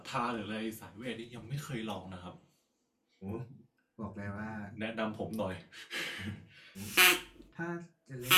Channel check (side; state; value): both; identical; correlation 1.00